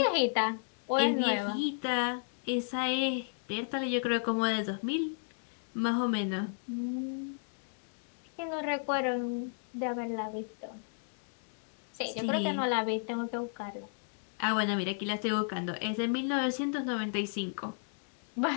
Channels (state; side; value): silent; right; digital silence